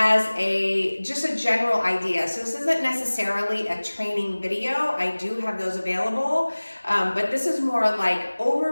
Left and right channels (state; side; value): inverted; both; correlation -1.00